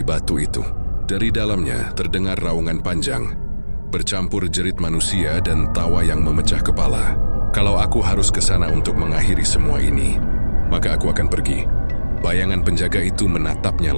itu. Dari dalamnya terdengar raungan panjang, bercampur jerit manusia dan tawa yang memecah kepala. "Kalau aku harus ke sana untuk mengakhiri semua ini, maka aku akan pergi." Bayangan penjaga itu menatapnya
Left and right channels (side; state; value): both; inverted; correlation -1.00